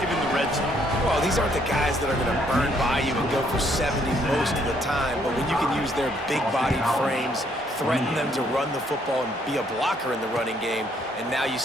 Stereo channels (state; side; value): normal; both; correlation 0.68